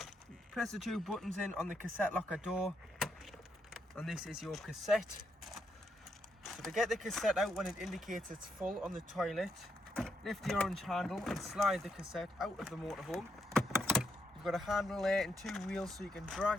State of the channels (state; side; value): normal; both; correlation 0.79